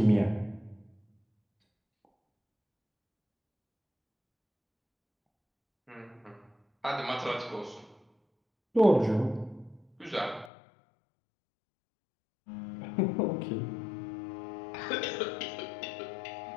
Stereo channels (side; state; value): right; drops out; at 10.5 s